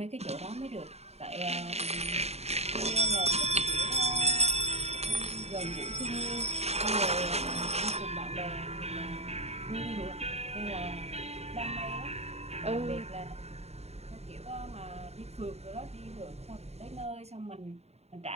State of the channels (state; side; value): late; left; 0.31 ms